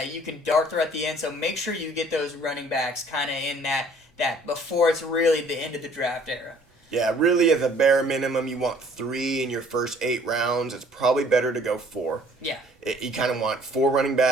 you can dart through at the end. So make sure you get those running backs kind of in that before it's really the end of the draft era. Yeah, really, as a bare minimum, you want 3 in your first 8 rounds. It's probably better to go 4. Yeah. You kind of want 4 running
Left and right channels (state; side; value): normal; both; correlation 0.56